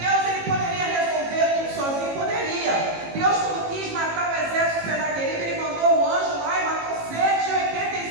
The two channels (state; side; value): late; left; 18 ms